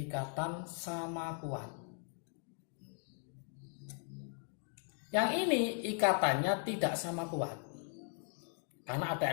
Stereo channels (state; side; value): silent; right; 52 dB below the other